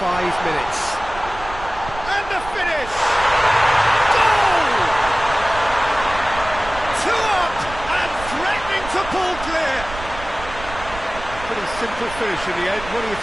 minutes. And the finish! Goal! 2 up and threatening to pull clear. Pretty simple finish in the end. What do you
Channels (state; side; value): noise; right; rumble, 13 dB below the sound